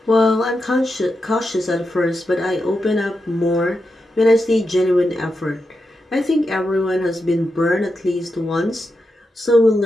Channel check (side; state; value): both; normal; correlation 0.87